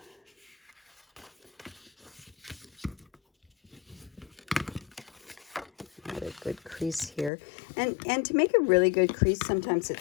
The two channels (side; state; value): right; drops out; at 7.3 s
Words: got a good crease here. And to make a really good crease, sometimes